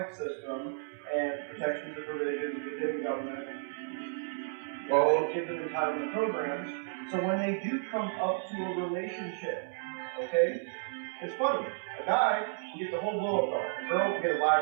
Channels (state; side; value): silent; left; 56 dB below the other